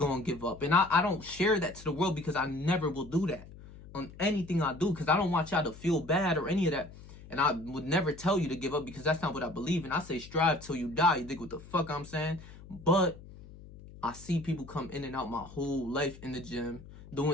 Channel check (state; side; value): noise; left; hum, 18 dB below the sound